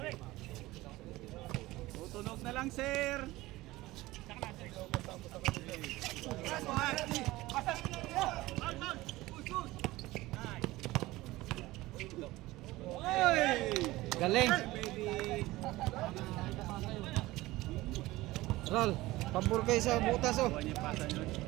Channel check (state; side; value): quieter; left; 18.7 dB